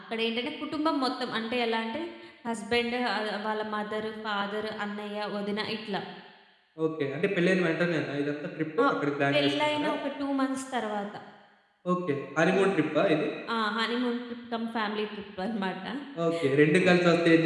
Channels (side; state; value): both; identical; correlation 1.00